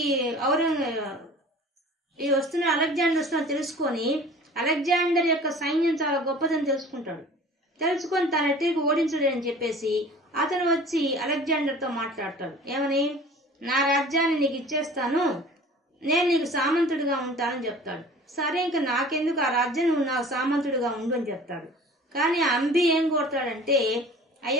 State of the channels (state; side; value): normal; both; correlation 0.44